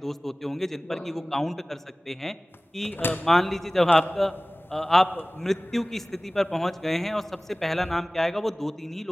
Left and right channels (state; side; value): normal; both; correlation 0.98